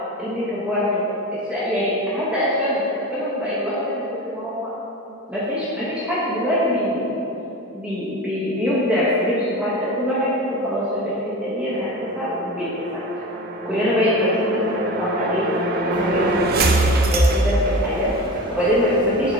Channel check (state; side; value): normal; both; correlation 0.30